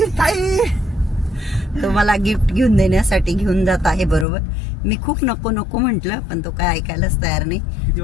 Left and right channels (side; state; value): right; drops out; at 4.2 s